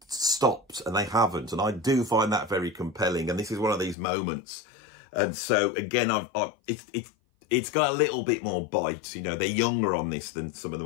stopped, and they haven't. And I do find that very compelling. And this is one of these moments. And so again, it's got a little bit more bite. You know, they're younger on this than some of the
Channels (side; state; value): right; drops out; at 4.0 s